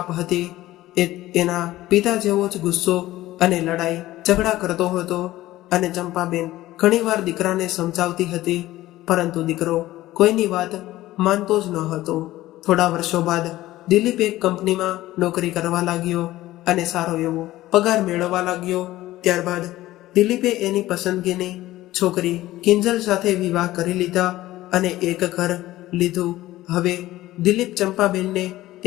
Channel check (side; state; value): right; quieter; 16.1 dB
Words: હતી. એ એના પિતા જેવો જ ગુસ્સો અને લડાઈ ઝઘડા કરતો હતો અને ચંપાબેન ઘણીવાર દીકરાને સમજાવતી હતી, પરંતુ દીકરો કોઈની વાત માનતો જ ન હતો. થોડા વર્ષો બાદ દિલીપ એક કંપનીમાં નોકરી કરવા લાગ્યો અને સારો એવો પગાર મેળવવા લાગ્યો. ત્યારબાદ દિલીપે એની પસંદગીની છોકરી કિંજલ સાથે વિવાહ કરી લીધા અને એક ઘર લીધું. હવે દિલીપ ચંપાબેનને